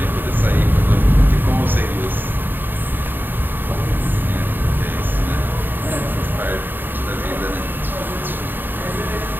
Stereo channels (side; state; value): left; late; 0.093 ms